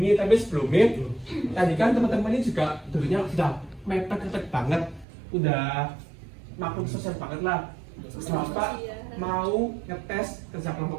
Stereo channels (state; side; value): drops out; left; at 5.1 s